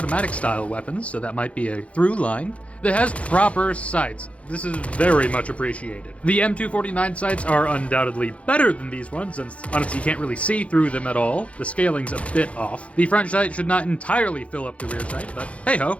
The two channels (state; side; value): late; right; 0.063 ms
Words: style weapons, so that might be a through line, that has proper sights. This is very much appreciated. The M249 sights are undoubtedly better than these ones, since honestly you can't really see through them at all. The scaling's a bit off. The front sight should not entirely fill up the rear sight, but hey ho,